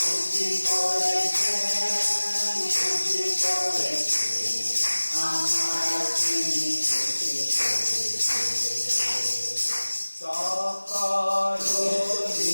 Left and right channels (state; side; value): inverted; both; correlation -1.00